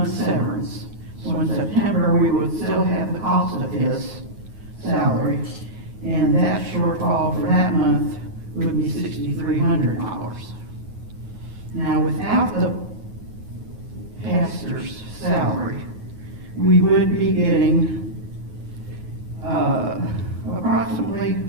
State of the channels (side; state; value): left; late; 9.4 ms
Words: severance. So in September, we would still have the cost of his salary, and that shortfall for that month would be $6,300. Now, without the pastor's salary, we would be getting approximately